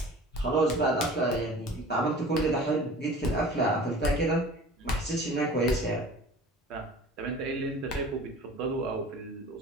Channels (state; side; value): normal; both; correlation 0.42